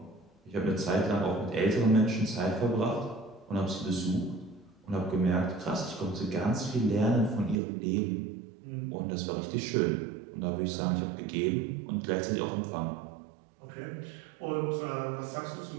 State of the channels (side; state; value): left; drops out; at 7.6 s